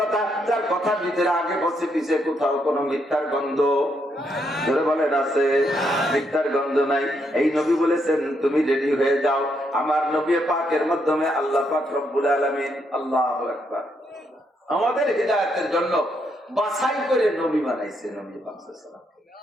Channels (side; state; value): both; normal; correlation 0.77